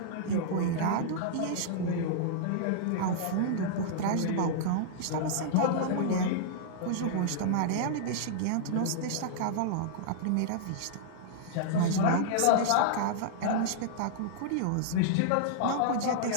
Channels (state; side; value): different; both; correlation -0.02